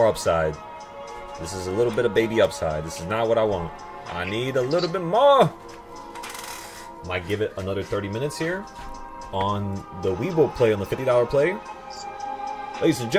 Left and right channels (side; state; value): both; identical; correlation 1.00